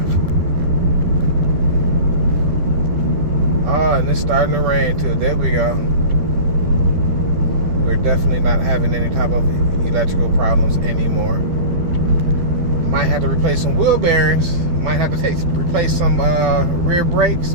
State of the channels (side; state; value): left; late; 12 ms